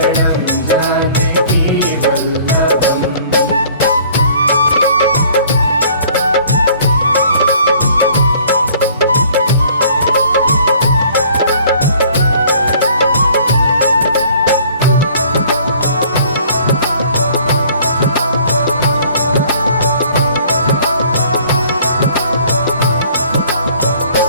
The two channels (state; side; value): inverted; both; correlation -0.54